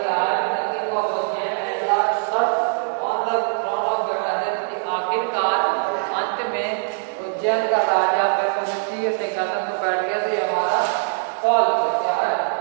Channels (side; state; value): left; silent; 63 dB below the other